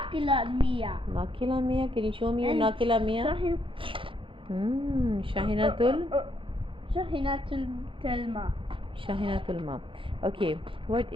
Mia. Nakila Mia. Can you show me your Nakila Mia? Shahinatul. Shahinatul Telma. Shahinatul Ma. Okay, what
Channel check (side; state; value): left; late; 0.25 ms